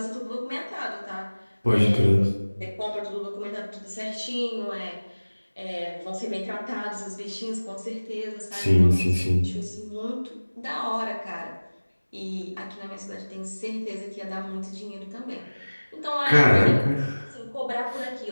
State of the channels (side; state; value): both; inverted; correlation -1.00